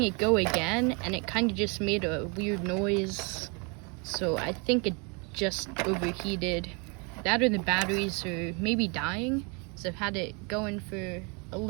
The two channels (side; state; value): left; quieter; 32.5 dB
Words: it go again and it kind of just made a weird noise. So I think it just overheated. That or the batteries are maybe dying. Because I've had it going for a